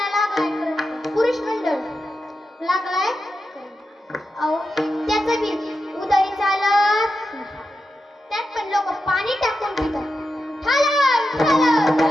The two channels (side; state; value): both; normal; correlation 0.89